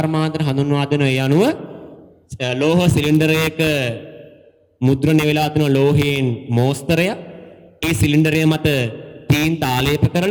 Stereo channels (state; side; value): identical; both; correlation 1.00